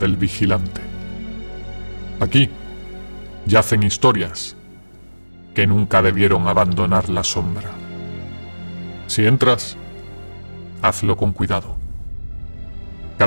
vigilante. Aquí yacen historias que nunca debieron abandonar la sombra. Si entras, hazlo con cuidado.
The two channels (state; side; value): inverted; both; correlation -1.00